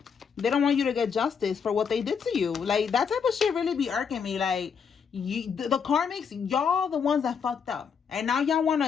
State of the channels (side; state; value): right; quieter; 6.5 dB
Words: They don't want you to get justice for what they did to you. Like that type of shit really be irking me. Like the karmics, y'all the ones that fucked up, and now y'all want